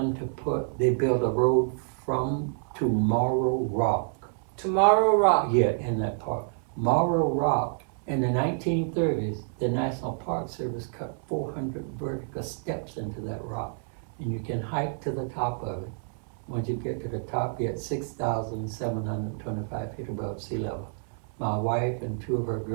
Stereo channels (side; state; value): left; silent; 56 dB below the other